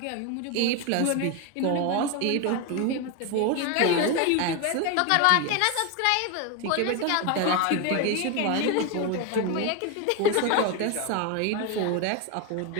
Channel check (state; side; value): different; both; correlation 0.02